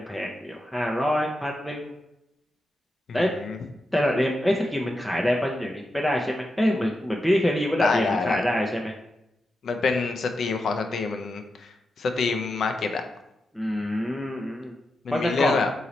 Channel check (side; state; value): both; normal; correlation 0.88